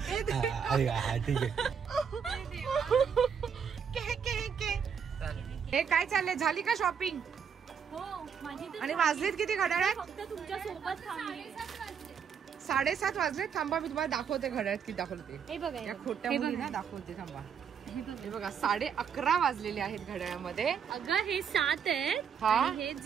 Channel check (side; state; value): left; quieter; 7.1 dB